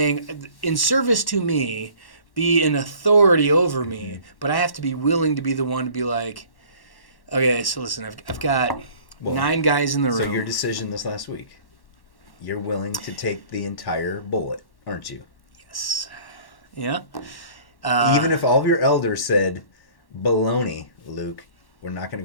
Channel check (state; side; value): late; right; 1.1 ms